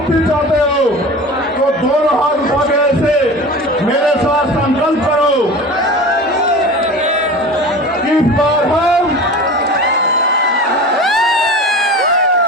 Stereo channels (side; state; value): both; normal; correlation 0.35